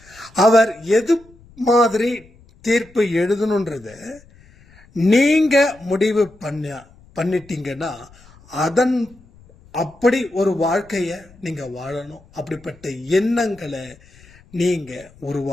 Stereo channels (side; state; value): left; noise; rumble, 26 dB below the sound